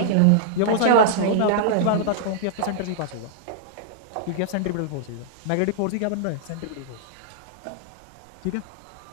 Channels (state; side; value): different; both; correlation -0.02